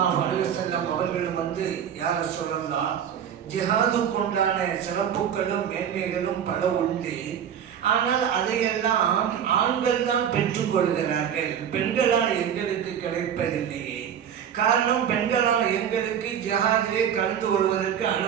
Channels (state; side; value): quieter; left; 8.8 dB